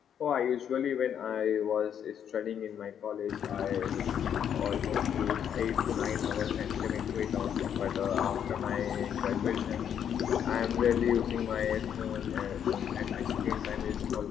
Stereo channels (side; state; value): right; quieter; 8.8 dB